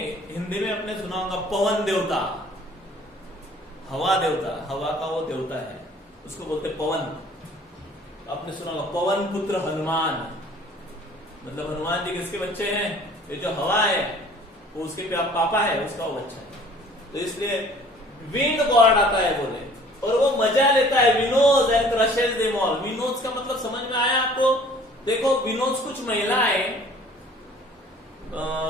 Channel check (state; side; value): normal; both; correlation 0.52